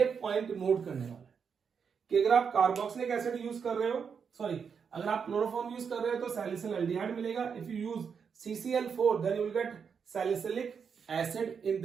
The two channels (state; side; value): quieter; left; 6.5 dB